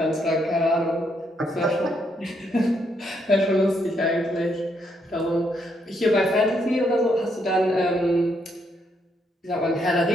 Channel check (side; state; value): both; normal; correlation 0.76